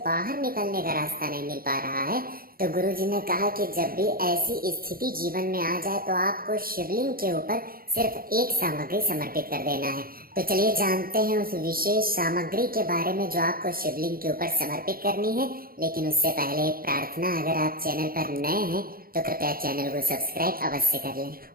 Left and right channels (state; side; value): late; left; 0.43 ms